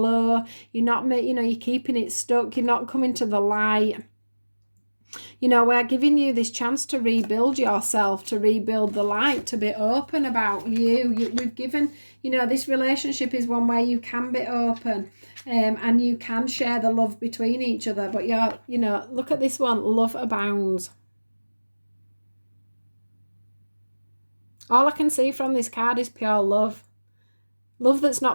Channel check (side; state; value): both; inverted; correlation -1.00